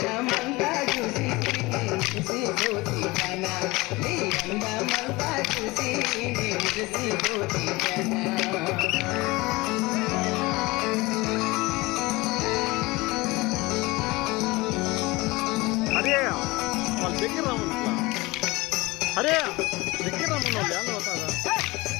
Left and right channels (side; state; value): right; quieter; 22.2 dB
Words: చూసి మురిసిపోతి జన నీ అందమంతా చూసి మురిసిపోతి జన దగ్గర రామన్ అరే దగ్గర రామన్ వాళ్ళు ఎలా అవుతారా